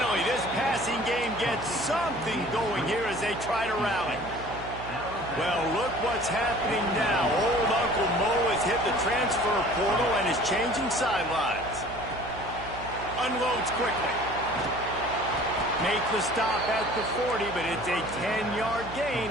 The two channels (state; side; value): noise; right; hum, 13 dB below the sound